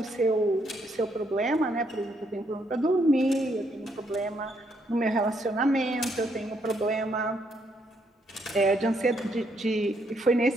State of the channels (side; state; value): both; normal; correlation 0.74